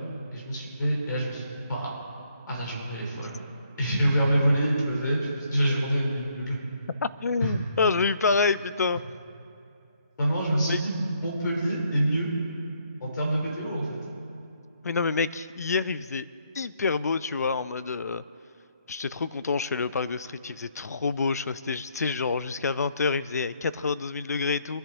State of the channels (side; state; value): both; inverted; correlation -0.71